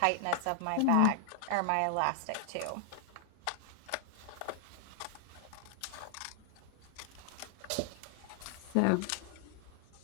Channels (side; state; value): both; different; correlation 0.00